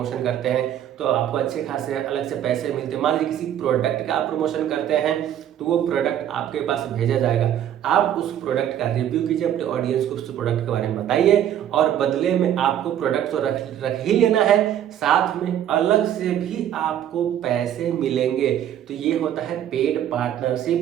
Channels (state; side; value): quieter; left; 10.7 dB